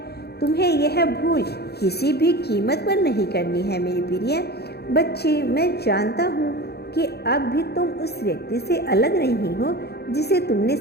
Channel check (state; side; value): late; right; 0.47 ms